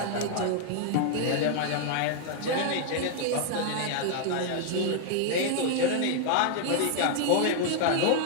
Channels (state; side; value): different; both; correlation 0.00